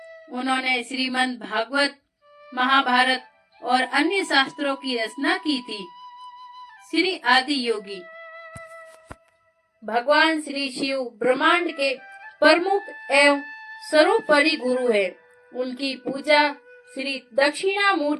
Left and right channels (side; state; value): both; identical; correlation 1.00